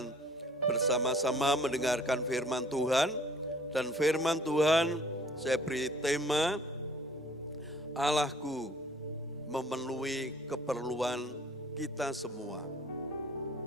bersama-sama mendengarkan firman Tuhan. Dan firman Tuhan saya beri tema, Allahku memenuhi keperluan kita semua.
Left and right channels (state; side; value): normal; both; correlation 0.55